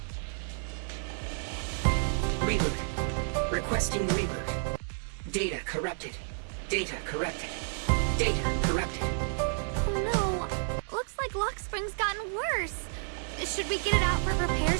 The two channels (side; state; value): left; silent; 57 dB below the other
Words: Reboot. Requesting reboot. Data corrupted. Data corrupted. Data corrupted. Oh no! Looks like Lock Spring's gotten worse. Should we get it out for